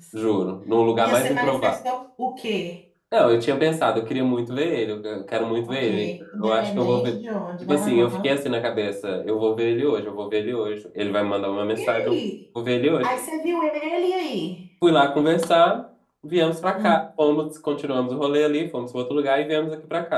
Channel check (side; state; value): both; identical; correlation 1.00